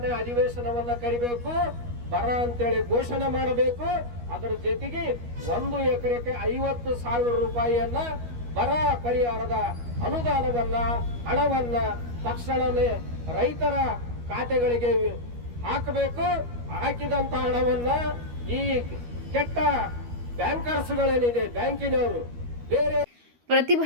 ಅಧಿವೇಶನವನ್ನ ಕರಿಬೇಕು, ಬರ ಅಂತೇಳಿ ಘೋಷಣೆ ಮಾಡಬೇಕು. ಅದರ ಜೊತೆಗೆ 1 ಎಕರೆಗೆ 50,000 ರೂಪಾಯಿಯನ್ನ ಬರ ಪರಿಹಾರದ ಅನುದಾನವನ್ನ ಹಣವನ್ನ ತಕ್ಷಣನೇ ರೈತರ ಖಾತೆಗಳಿಗೆ ಹಾಕಬೇಕು. ಹಾಕಿದಂತ ಹಣವನ್ನ ಈ ಕೆಟ್ಟ ಬ್ಯಾಂಕರ್ಸ್ಗಳೇನಿದೆ, ಬ್ಯಾಂಕಿನವರು ಬೇರೆ.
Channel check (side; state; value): left; late; 13 ms